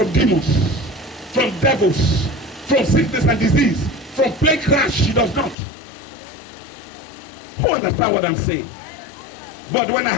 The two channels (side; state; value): right; drops out; at 5.6 s